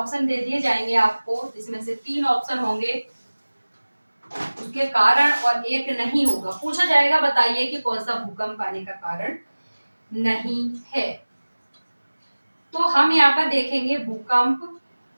दे दिए जाएंगे आपको, जिसमें से 3 ऑप्शन होंगे उसके कारण और एक नहीं होगा। पूछा जाएगा बताइए कि कौन सा भूकंप आने का कारण नहीं है। तो हम यहाँ पर देखेंगे भूकंप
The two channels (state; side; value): inverted; both; correlation -1.00